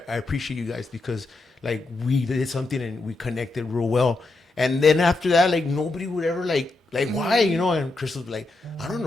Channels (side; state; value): right; quieter; 3.2 dB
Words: I appreciate you guys because like we did something and we connected real well. And then after that, like nobody would ever like why, and Crystal's like, I don't